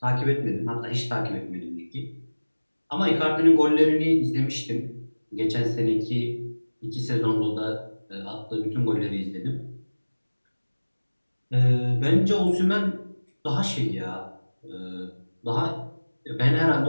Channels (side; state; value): both; inverted; correlation -1.00